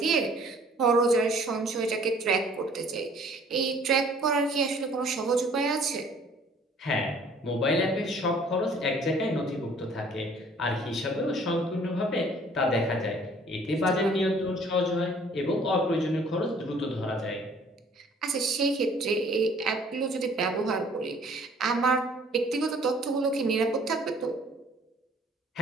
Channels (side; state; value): both; normal; correlation 0.55